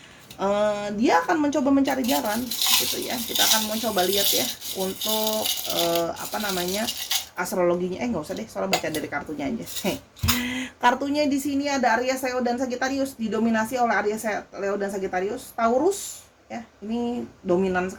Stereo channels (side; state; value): both; identical; correlation 1.00